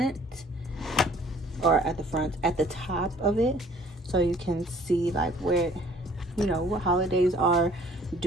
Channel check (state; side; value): normal; both; correlation 0.55